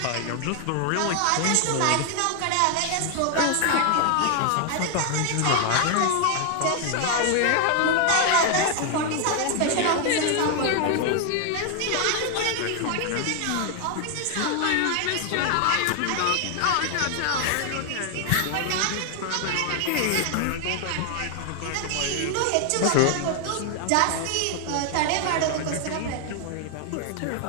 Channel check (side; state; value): both; different; correlation 0.00